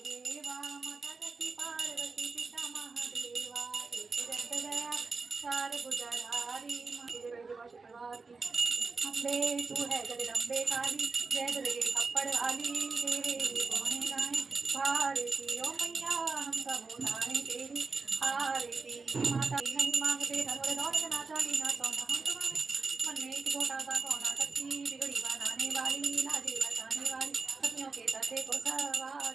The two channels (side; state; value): left; quieter; 4.3 dB